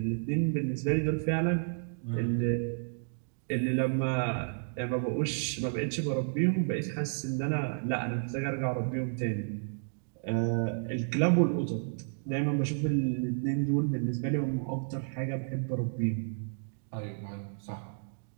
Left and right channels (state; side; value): silent; left; digital silence